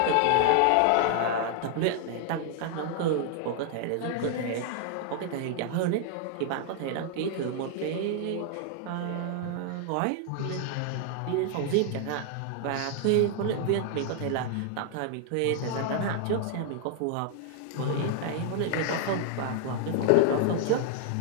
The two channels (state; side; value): different; both; correlation 0.00